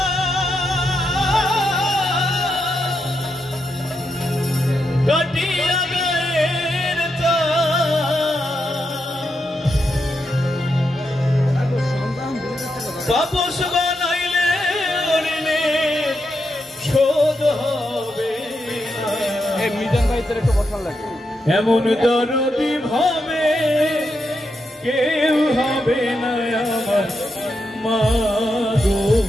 কাটিয়া গায়ের বাপস বানাইলে ঋণে শোধ হবে মিজান ভাই তোর একটু বসার লাগে এমন দরদি ভাবে কেউ হবে না আমার মা গো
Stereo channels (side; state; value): both; normal; correlation 0.84